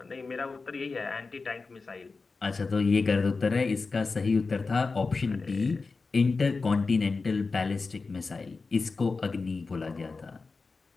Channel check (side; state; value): right; quieter; 4.2 dB